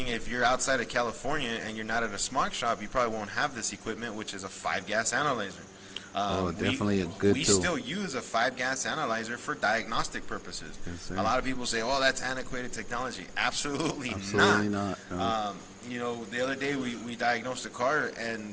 if you're outside of California and you're not at a smog shop, you probably won't have this equipment, which is a 5-gas analyzer. Definitely a good we tool. still use a 5-gas analyzer for diagnostic purposes. Yes, A lot of people say, "Oh, that's antiquated technology." Absolutely not. No. You know, the other day we diagnosed a car,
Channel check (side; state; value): both; identical; correlation 1.00